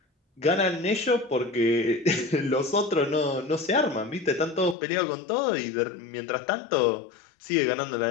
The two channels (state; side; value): drops out; right; at 4.8 s